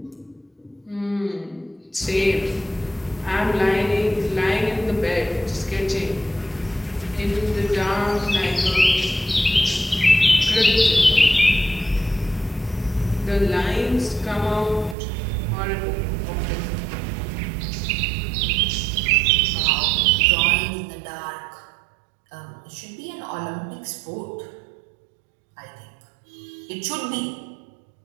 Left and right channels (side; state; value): left; drops out; at 15.0 s